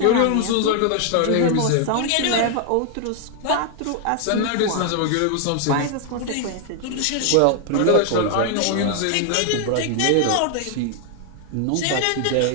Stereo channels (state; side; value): different; both; correlation 0.00